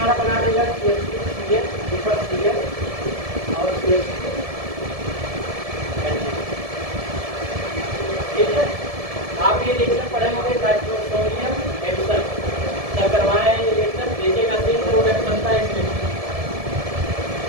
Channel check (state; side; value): late; left; 1.7 ms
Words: बना देगा CH3CH और CH2, ठीक है। आप ये रिएक्शन पढ़े होंगे, नाइट्रोसोनियम एडिशन जब करवाए हैं, ये रिएक्शन देखिएगा, सेम प्रोडक्ट बनता है इसमें।